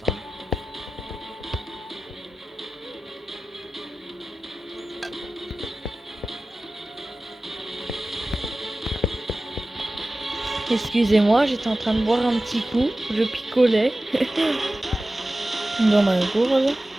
Excusez-moi, j'étais en train de boire un petit coup, je picolais dans ma gourde.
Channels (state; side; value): normal; both; correlation 0.95